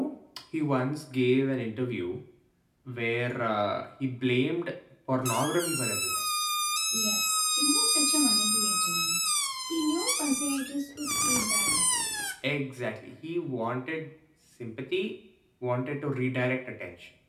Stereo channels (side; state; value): both; identical; correlation 1.00